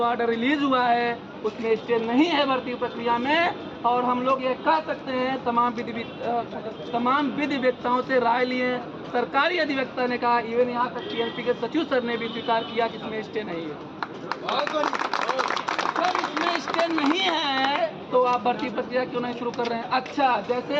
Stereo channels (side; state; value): both; identical; correlation 1.00